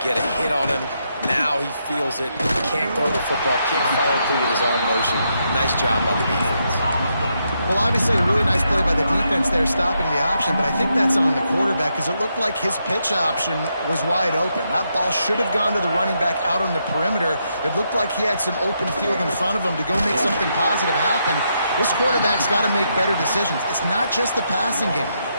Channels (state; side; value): inverted; both; correlation -0.80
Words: get a hit on him. Now he feels it. Can't throw the football. Can't follow through with his arm motion. Nice job by the defense. Well, obviously a really nice play by the defense there stopping the option, but I think that's on the quarterback because it looked like his pitch option was wide open. That ball should have gone to the running back out on the perimeter. It looked like he had some open field in front of him to go make something positive happen. This quarterback's got to make better decisions. It's not just the passing game.